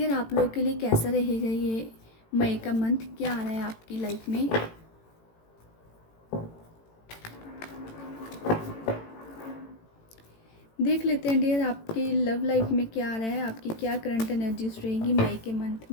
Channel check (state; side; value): late; right; 18 ms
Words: आप लोग के लिए कैसा रहेगा ये मई का मंथ। क्या आ रहा है आपकी लाइफ में। देख लेते हैं डियर आपकी लव लाइफ में क्या आ रहा है, आपकी क्या करंट एनर्जीज रहेगी मई के मंथ